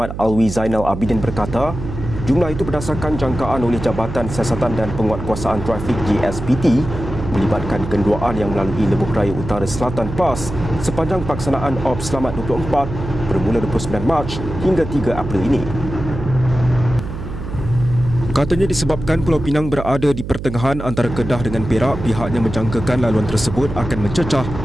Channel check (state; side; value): noise; right; hum, 8 dB below the sound